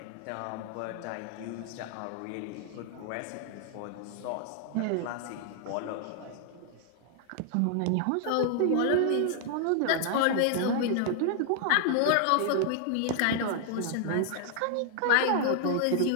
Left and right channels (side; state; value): both; different; correlation 0.00